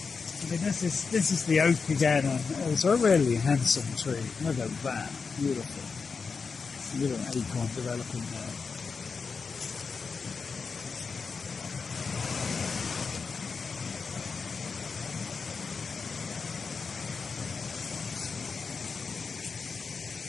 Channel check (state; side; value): quieter; right; 5.1 dB